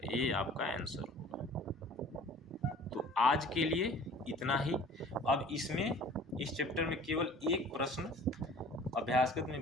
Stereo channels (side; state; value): both; normal; correlation 0.47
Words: ये आपका आंसर होगा। तो आज के लिए इतना ही। अब इसमें इस चैप्टर में केवल एक प्रश्न अभ्यासगत